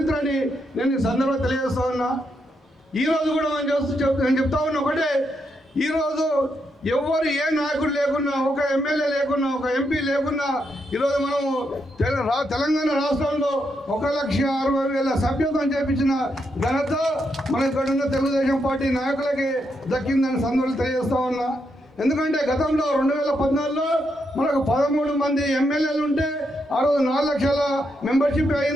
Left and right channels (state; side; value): normal; both; correlation 0.81